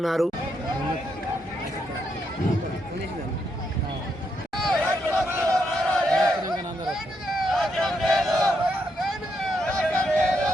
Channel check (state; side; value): normal; both; correlation 0.79